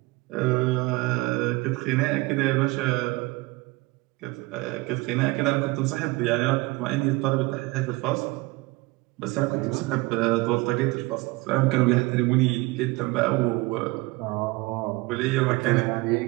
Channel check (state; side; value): quieter; left; 22.3 dB